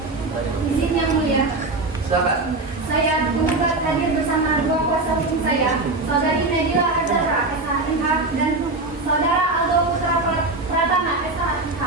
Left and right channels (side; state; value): left; quieter; 3.1 dB